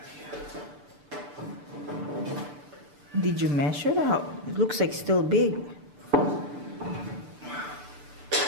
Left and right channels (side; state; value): left; late; 6.8 ms